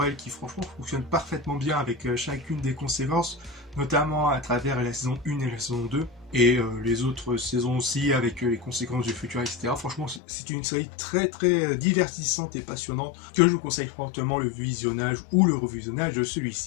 qui franchement fonctionne parfaitement bien avec chacune des conséquences, notamment à travers la saison 1 et la saison 2. Et les autres saisons aussi avec les conséquences du futur, etc. Franchement, c'est une série très très divertissante et passionnante que je vous conseille fortement le visionnage ou le revisionnage de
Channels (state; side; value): drops out; right; at 10.2 s